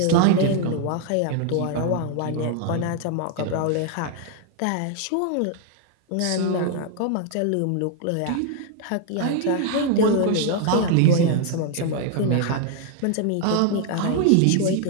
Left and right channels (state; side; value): different; both; correlation 0.00